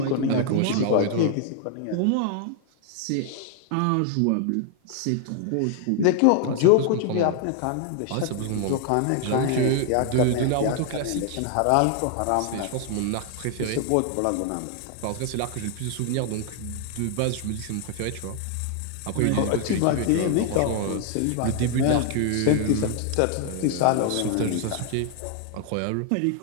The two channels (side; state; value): both; different; correlation 0.00